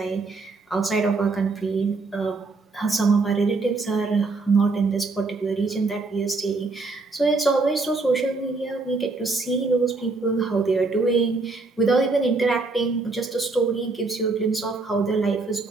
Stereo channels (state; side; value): quieter; left; 3.7 dB